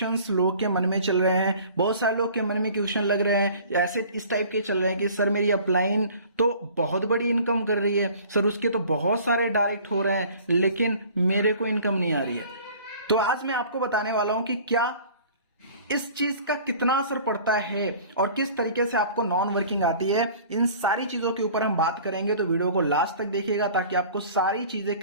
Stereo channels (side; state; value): both; inverted; correlation -0.47